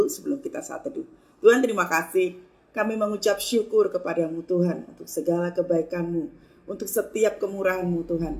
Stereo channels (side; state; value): both; identical; correlation 1.00